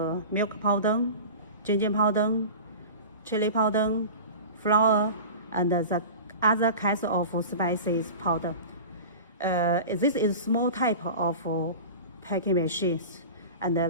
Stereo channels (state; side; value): inverted; both; correlation -0.33